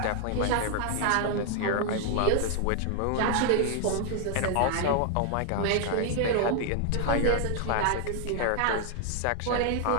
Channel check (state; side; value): different; both; correlation 0.00